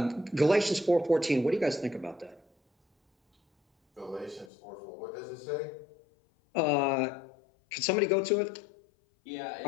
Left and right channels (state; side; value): drops out; right; at 4.5 s